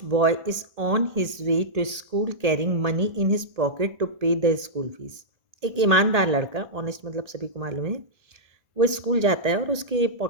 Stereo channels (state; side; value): late; left; 1.8 ms